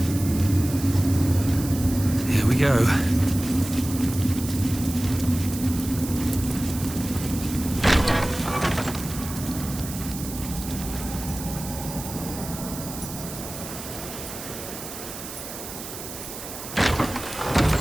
Here we go.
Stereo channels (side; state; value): right; noise; hiss, 10 dB below the sound